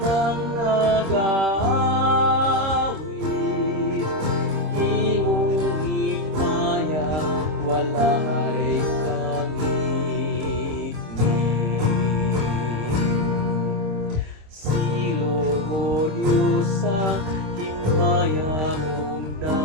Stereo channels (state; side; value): late; left; 26 ms